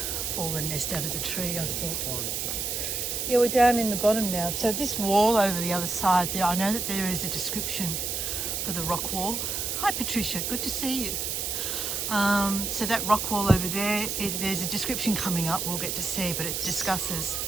Fallen nest out of the tree, I thought. Yeah, we're down in the bottom now. So this wall over the other side there, I know that there is a description for the rock wall. Hi Patricia, good to see you. So that rock wall over there, there's a description coming up we'll get to see, but it discusses,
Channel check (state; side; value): noise; right; hiss, 2 dB below the sound